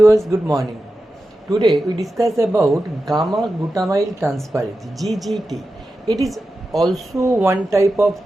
good morning. Today we discuss about gamma-glutamyl transferase (GGT). It is also one type of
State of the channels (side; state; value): both; normal; correlation 0.92